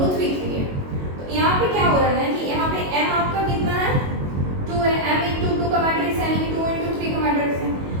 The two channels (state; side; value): late; left; 22 ms